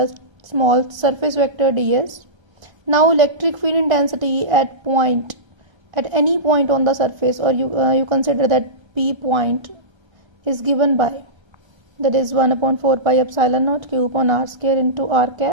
small surface vector ds. Now electric field intensity at any point on the surface, or you consider that P point is given by, that is 1 upon 4 pi epsilon naught Q upon r square into r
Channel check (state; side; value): late; left; 1.3 ms